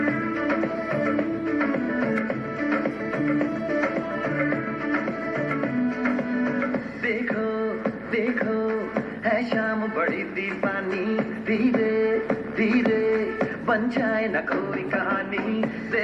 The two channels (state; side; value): identical; both; correlation 1.00